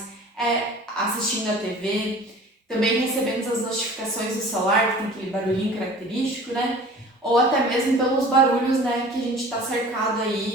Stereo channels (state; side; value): normal; both; correlation 0.44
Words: é assistindo a TV, também recebendo as notificações do celular, que tem aquele barulhinho característico, né? Ou até mesmo pelos barulhos, né, que a gente está cercado